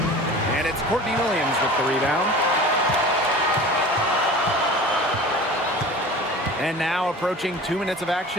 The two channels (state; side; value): normal; both; correlation 0.39